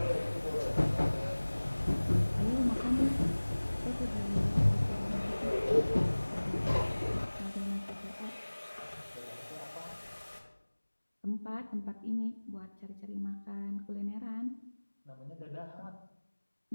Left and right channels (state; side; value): inverted; both; correlation -1.00